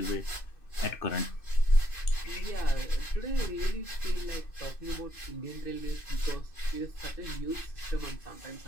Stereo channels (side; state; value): right; late; 2.6 ms